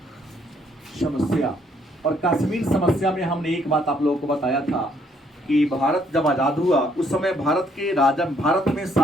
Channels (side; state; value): both; normal; correlation 0.68